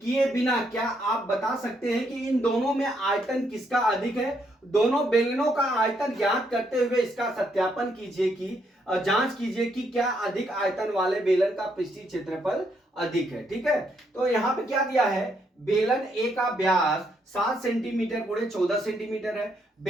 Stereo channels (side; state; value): both; normal; correlation 0.75